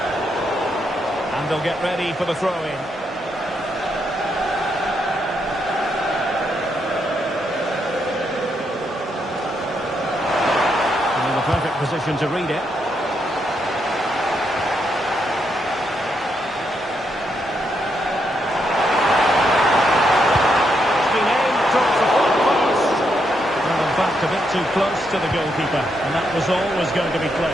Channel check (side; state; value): both; normal; correlation 0.79